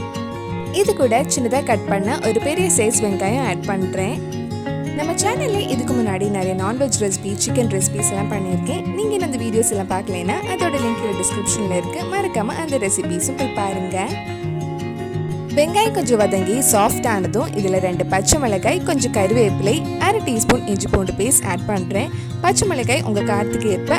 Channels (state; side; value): identical; both; correlation 1.00